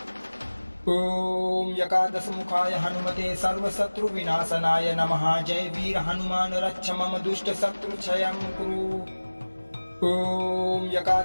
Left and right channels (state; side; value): inverted; both; correlation -1.00